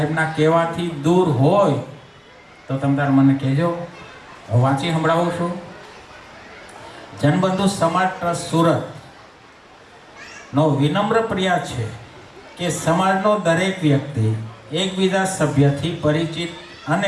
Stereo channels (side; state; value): both; identical; correlation 1.00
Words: કહેવાથી દૂર હોય તો તમે તાર મને કહેજો, હું વાંચી સંભળાવું છું. જનબંધુ સમાજ ટ્રસ્ટ સુરતનો વિનમ્ર પ્રયાસ છે કે સમાજનો દરેક વ્યક્તિ એકબીજા સભ્યથી પરિચિત